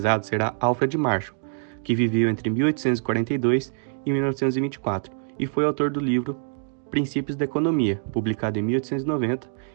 será Alfred Marshall, que viveu entre 1842 e 1924 e foi autor do livro Princípios da Economia, publicado em 1890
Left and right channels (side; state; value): left; silent; digital silence